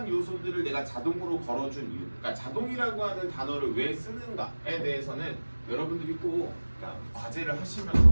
요소들을 내가 자동으로 걸어준 이유. 그러니까 자동이라고 하는 단어를 왜 쓰는가에 대해서는 여러분들이 꼭 그러니까 과제를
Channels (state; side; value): inverted; both; correlation -1.00